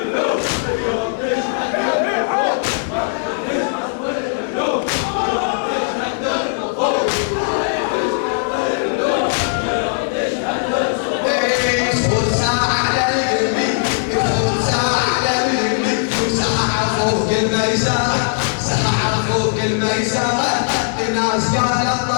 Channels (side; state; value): right; silent; digital silence